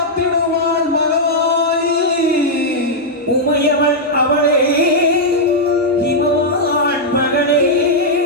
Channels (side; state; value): both; normal; correlation -0.05